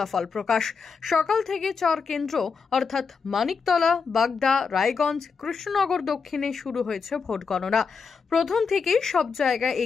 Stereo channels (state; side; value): quieter; right; 5.4 dB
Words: প্রকাশ। সকাল থেকে 4 কেন্দ্র অর্থাৎ মানিকতলা, বাগদা, রায়গঞ্জ, কৃষ্ণনগর দক্ষিণে শুরু হয়েছে ভোট গণনা। প্রথম থেকেই সব জায়গায়